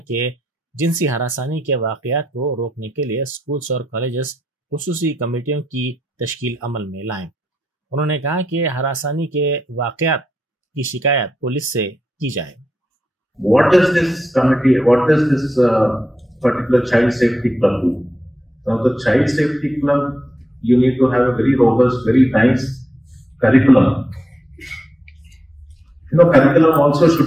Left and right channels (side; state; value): both; normal; correlation 0.85